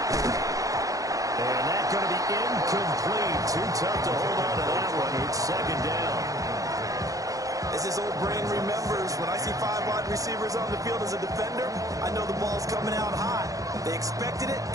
And that's going to be incomplete. Too tough to hold on to that one. It's second down. As his old brain remembers, when I see 5 wide receivers on the field as a defender, I know the ball's coming out hot. They expected it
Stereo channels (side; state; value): left; late; 0.17 ms